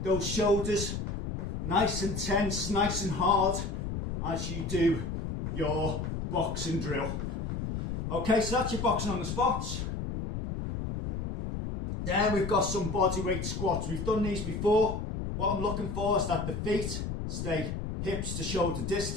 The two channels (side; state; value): left; noise; rumble, 4 dB below the sound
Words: those shoulders nice and tense, nice and hard as you do your boxing drill. Okay, so that's your boxing on the spots. Then we've got some bodyweight squats. We've done these before. What I'm looking for is that the feet stay hips to shoulder